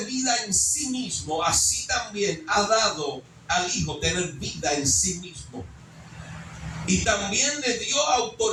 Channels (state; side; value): identical; both; correlation 1.00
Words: vida en sí mismo, así también ha dado al Hijo tener vida en sí mismo. Y también le dio